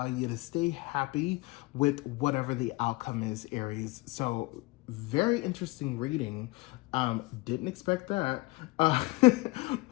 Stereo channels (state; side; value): quieter; right; 22.5 dB